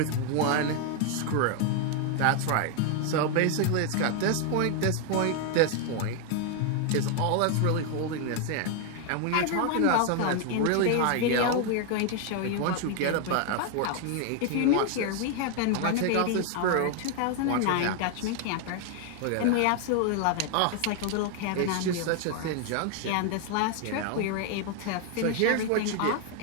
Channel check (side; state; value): both; different; correlation 0.01